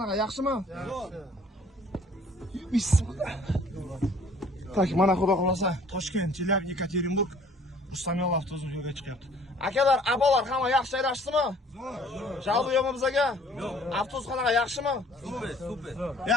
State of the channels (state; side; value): normal; both; correlation 0.55